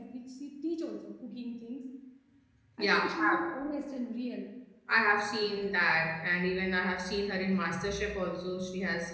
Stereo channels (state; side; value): identical; both; correlation 1.00